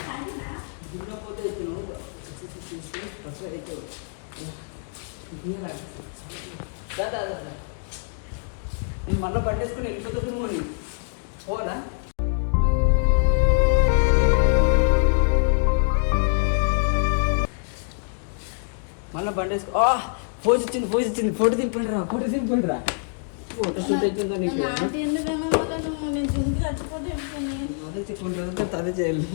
దున్నపోతే నేను మళ్ళీ పట్టేసుకుని వెళ్ళిపోతుంది నువ్వు పోనా? మళ్ళీ బండేసుకో. పోజ్ ఇచ్చింది. ఫోటో దింపండి రా. ఫోటో షూట్ అవుతుందా నీకు? నేను తింటే చచ్చిపోతే అదే చెప్పుకుంటారు, అదే చేయాలి.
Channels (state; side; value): silent; right; digital silence